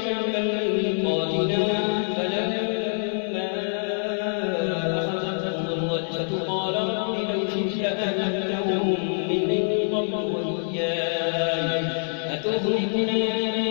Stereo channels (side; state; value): right; silent; digital silence